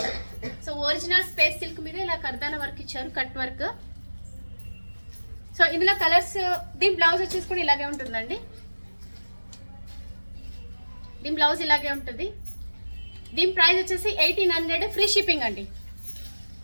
సో ఒరిజినల్ స్పేస్ సిల్క్ మీద ఇలా కర్దానా వర్క్ ఇచ్చారు, కట్ వర్క్. సో ఇందులో కలర్స్, దీని బ్లౌజ్ వచ్చేసి కూడా ఇలాగే ఉంటుందండి. దీని బ్లౌజ్ ఇలాగే ఉంటుంది. దీని ప్రైస్ వచ్చేసి 1800 ఫ్రీ షిప్పింగ్ అండి.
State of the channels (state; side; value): inverted; both; correlation -1.00